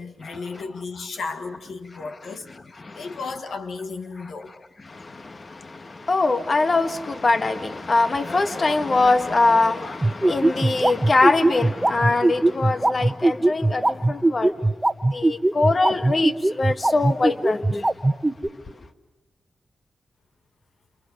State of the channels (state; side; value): normal; both; correlation 0.95